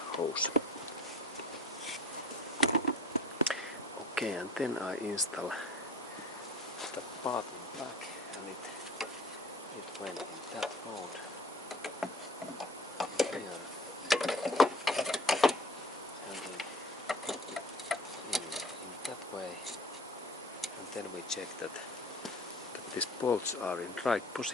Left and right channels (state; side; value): normal; both; correlation 0.45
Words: hose. Okay, and then I install the part in back, and it went in that road here, and in that way, and then we check that these bolts are in right